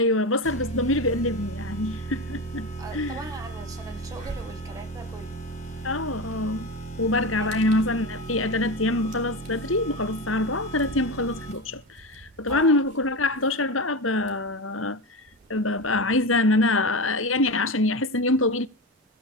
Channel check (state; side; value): normal; both; correlation 0.21